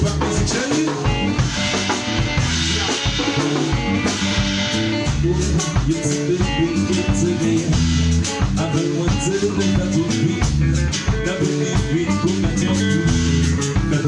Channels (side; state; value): both; identical; correlation 1.00